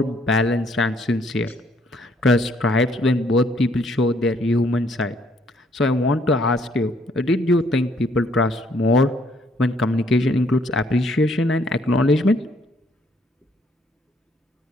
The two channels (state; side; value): normal; both; correlation 0.67